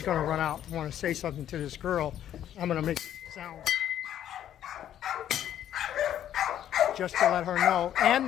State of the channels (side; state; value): right; quieter; 10.9 dB